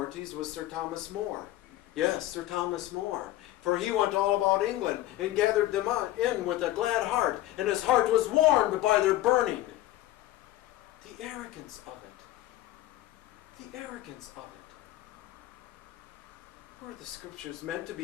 was Sir Thomas More. Yes, Sir Thomas More. For he went all about England and gathered them in with a glad heart, and his heart was warmed by their burning. The arrogance of it. The arrogance of it. Were the scriptures meant to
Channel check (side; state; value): right; quieter; 15.3 dB